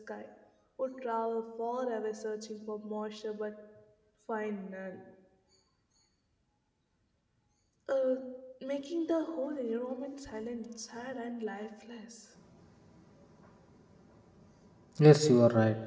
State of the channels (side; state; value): both; identical; correlation 1.00